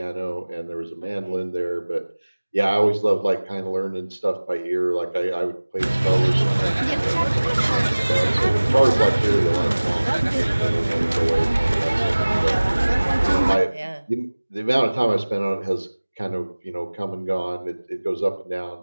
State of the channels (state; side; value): inverted; both; correlation -1.00